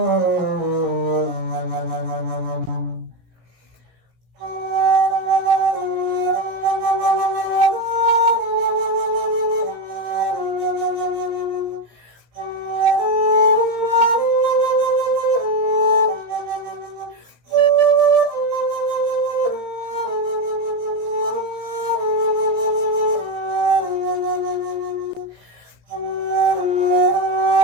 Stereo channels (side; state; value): left; late; 17 ms